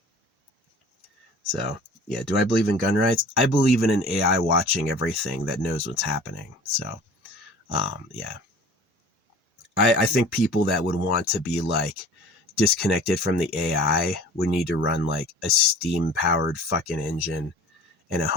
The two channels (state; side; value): normal; both; correlation 0.44